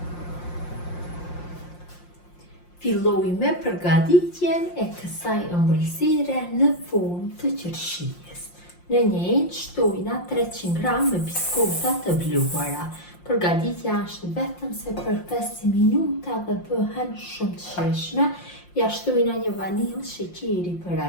Filloj me përgatitjen e kësaj ëmbëlsire në formë të qershis. Në një enë shtojna 300 gram me biskota të bluara. Përgatitja është vetëm se për 5 minuta dhe bëhen shumë të shijshme. Ja shtojna një vanilë sheqeri për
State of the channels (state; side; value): late; right; 5.7 ms